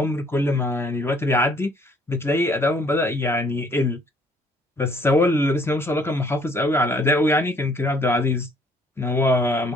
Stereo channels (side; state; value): both; normal; correlation 0.61